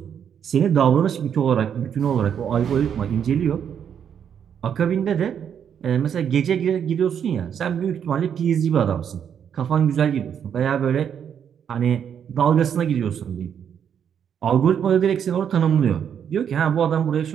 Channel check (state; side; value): quieter; left; 8.3 dB